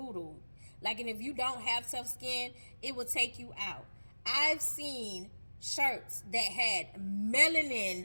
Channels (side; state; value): both; inverted; correlation -1.00